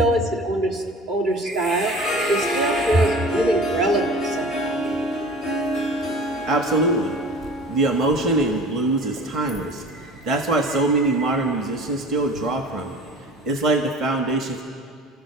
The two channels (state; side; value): normal; both; correlation 0.41